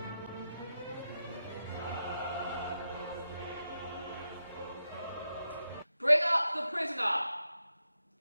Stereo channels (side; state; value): both; inverted; correlation -0.87